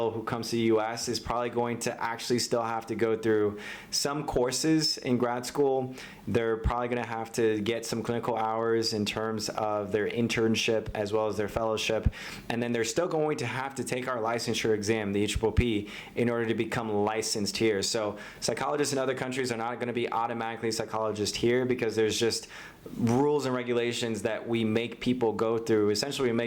who comes to the US is probably going to actually still have to go through some courses in grad school. They're probably going to have to get some clinical hours in terms of their internship as well as their fellowship. And then they're still going to have to take our licensure exam, the EPPP, in order to become licensed here. So psychologists in other countries are not going to be automatically psychologists here because there's just rules and regulations that we make people go through. Essentially, we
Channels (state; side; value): identical; both; correlation 1.00